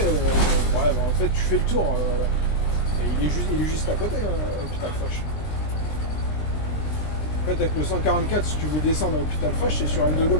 Ouais, bah, en fait, tu fais le tour. Et il est juste à côté, l'hôpital Foch. En fait, avec le 144, si tu veux descendre à l'hôpital Foch, c'est sur N de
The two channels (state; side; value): late; right; 20 ms